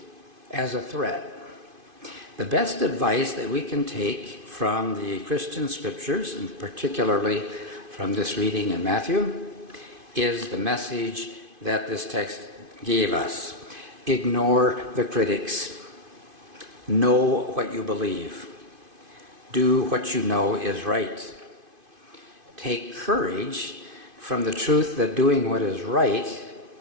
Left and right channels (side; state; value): left; late; 2.5 ms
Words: as a threat. The best advice that we can take from the Christian scriptures, and particularly from this reading in Matthew, is the message that this text gave us. Ignore the critics. Know what you believe. Do what you know is right. Take courage from the truth that doing what is right